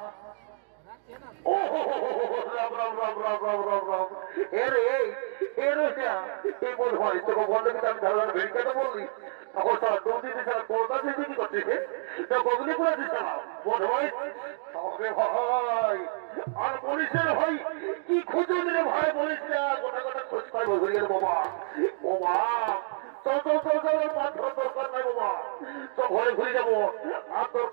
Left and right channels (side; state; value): left; silent; digital silence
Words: ও রাম রাম রাম রাম রাম রাম রাম, এর এর এই বল হয় তোকে বললে কিন্তু আমি ধারণা ভেড়িকাটা বললি তখন তারা দৌড় দিতে ছাড়া কলকাতা থেকে কি করছে গগনি করে দিচ্ছে না বল ভাই তবে ভাই আর বলিস ভাই কি খুঁজে দিলে ভাই বলিস না, গোটা গোটা খোঁজ পাই বলি বাবা। ও মা চল চল চল চল, মাছ দরকার নাই বাবা, তো ঘরে ঘুরে যাবো, আর